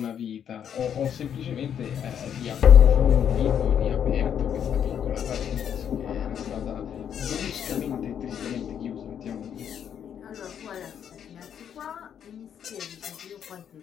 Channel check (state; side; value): quieter; right; 8.8 dB